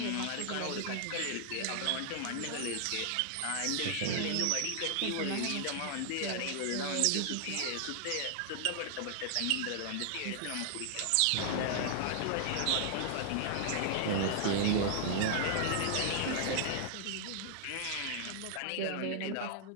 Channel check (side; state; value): both; different; correlation -0.01